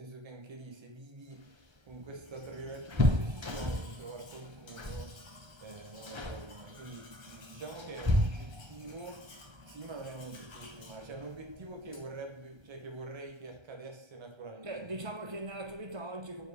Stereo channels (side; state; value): left; late; 1.3 ms